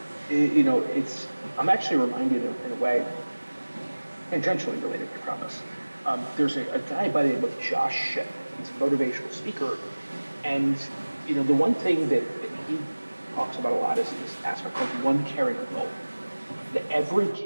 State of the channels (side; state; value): both; inverted; correlation -1.00